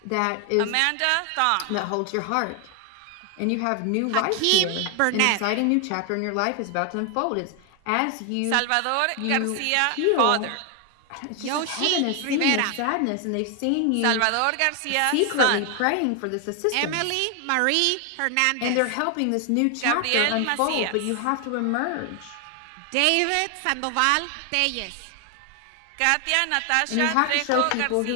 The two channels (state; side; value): different; both; correlation 0.00